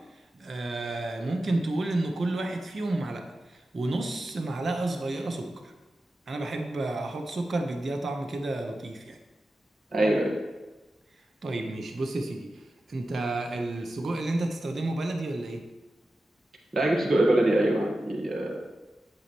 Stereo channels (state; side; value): normal; both; correlation 0.93